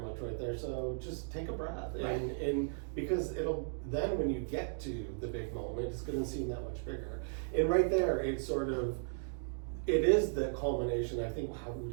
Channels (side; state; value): left; silent; digital silence